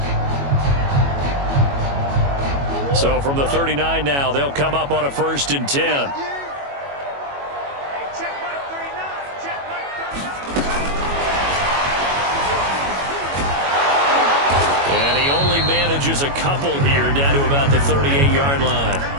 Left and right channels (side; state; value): left; late; 21 ms